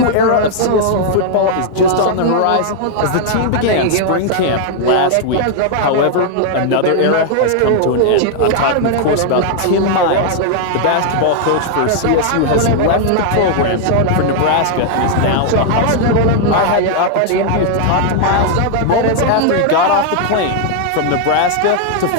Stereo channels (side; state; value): both; different; correlation 0.00